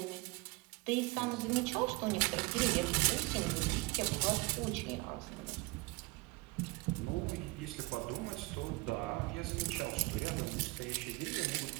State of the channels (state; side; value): quieter; left; 24.9 dB